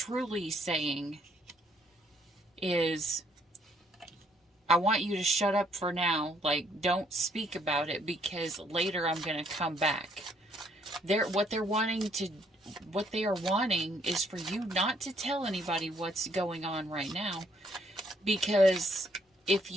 saying is, I want you to shut up for now. Like, don't speak about it, because later I'm going to come back. What they are wanting is for you not to tell anybody what's going on right now. Because if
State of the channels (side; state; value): both; normal; correlation 0.68